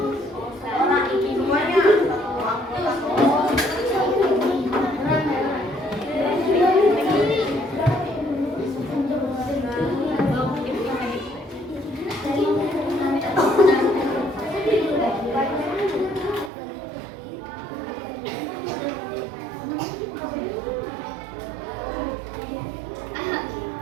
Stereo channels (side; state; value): left; drops out; at 16.5 s